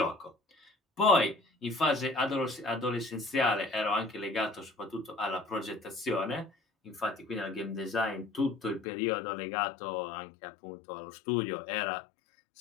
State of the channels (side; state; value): right; drops out; at 8.8 s